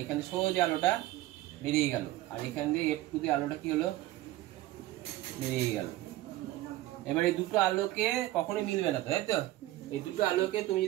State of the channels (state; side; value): quieter; left; 16.2 dB